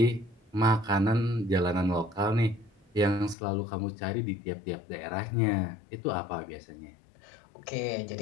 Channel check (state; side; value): drops out; right; at 3.4 s